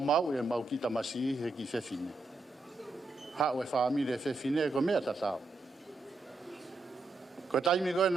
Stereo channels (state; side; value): quieter; left; 3.3 dB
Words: e mau ki tamasi he ki whewhine. Hao e whaamire e whewhine ko mea tatao. Ko taimi koe